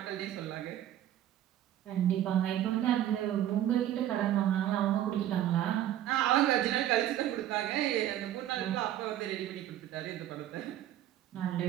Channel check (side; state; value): left; quieter; 12.1 dB